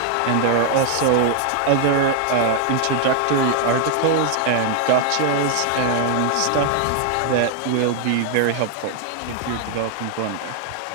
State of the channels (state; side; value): different; both; correlation 0.00